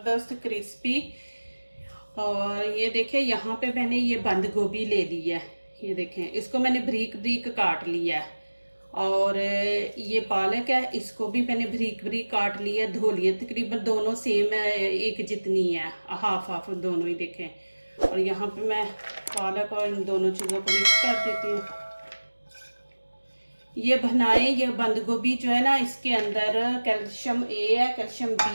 क्रिस्पी। और ये देखें, यहाँ पे मैंने ये बंद गोभी ले ली है। ये देखें, इसको मैंने बारीक बारीक काट लिया है। और ये पालक है, इसको भी मैंने बारीक बारीक काट लिया, धो लिया। तकरीबन दोनों सेम है, एक जितनी है, हाफ हाफ दोनों ही देखें। और यहाँ पे मैं पालक और इन दोनों चीज़ों को मिक्स कर देती हूँ। ये बनाएं, ये बंद गोभी जो है ना, इसके अंदर कैल्शियम ए है, कैल्शियम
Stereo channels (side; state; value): both; inverted; correlation -1.00